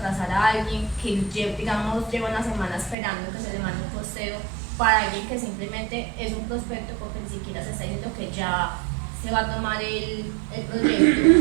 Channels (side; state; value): left; drops out; at 3.0 s